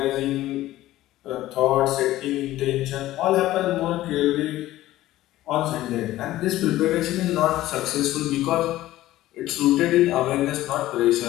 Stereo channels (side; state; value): right; quieter; 15.4 dB